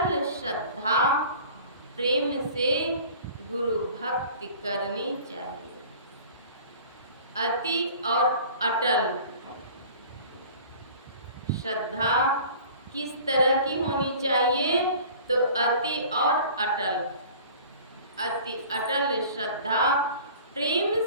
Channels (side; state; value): both; inverted; correlation -0.45